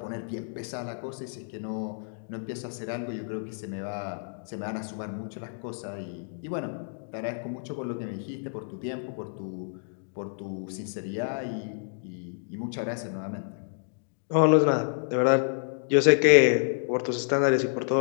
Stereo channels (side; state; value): right; silent; digital silence